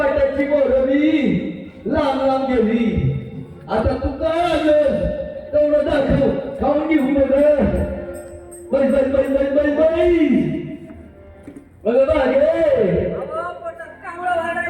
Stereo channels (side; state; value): both; identical; correlation 1.00